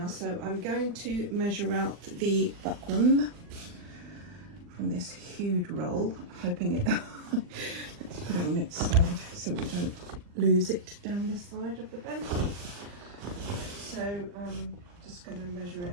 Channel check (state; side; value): late; left; 40 ms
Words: so I'm going to measure out the buckram from this huge roll, hoping it let's put it on its side so we don't lose it down the side of the bench. So I'm just going to measure